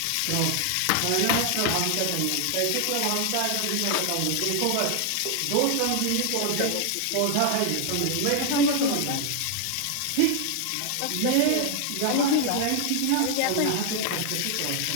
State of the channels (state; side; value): different; both; correlation 0.00